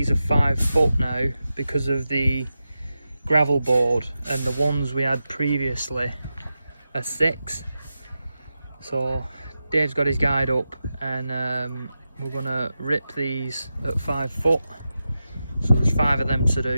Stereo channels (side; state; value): both; inverted; correlation -0.91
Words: are 5 foot now because of the gravel board, and the ones we had previously are 6. So Dave's got his guide up, and we're gonna rip these at 5 foot. So there's 5 of them to